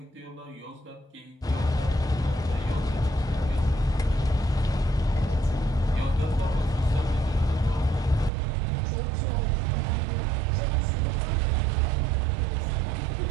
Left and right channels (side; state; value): left; drops out; at 8.3 s